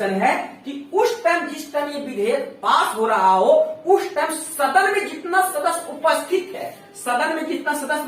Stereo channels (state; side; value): identical; both; correlation 1.00